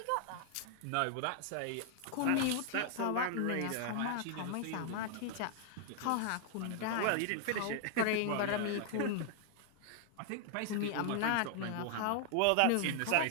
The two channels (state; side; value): different; both; correlation 0.00